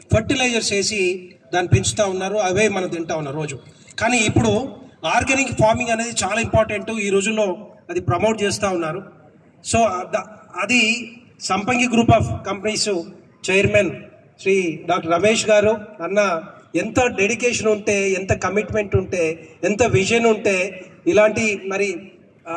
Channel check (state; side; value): identical; both; correlation 1.00